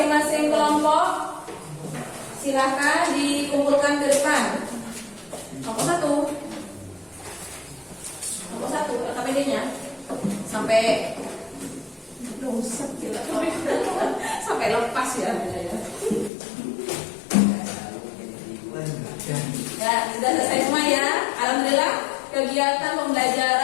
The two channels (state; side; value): drops out; right; at 16.3 s